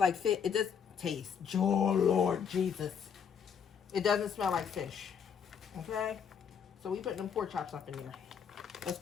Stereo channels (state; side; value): quieter; right; 7.3 dB